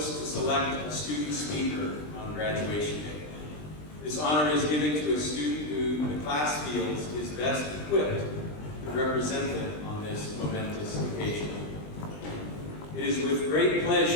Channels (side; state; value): right; late; 20 ms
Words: to select a student speaker on graduation day. This honor is given to a student who the class feels is best equipped to represent them on this momentous occasion. It is with great